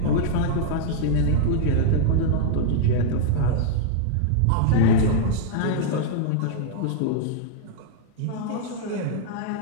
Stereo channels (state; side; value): different; both; correlation -0.01